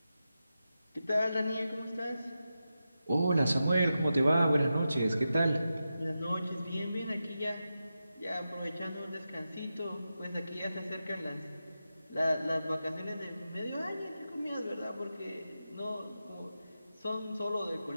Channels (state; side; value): inverted; both; correlation -0.91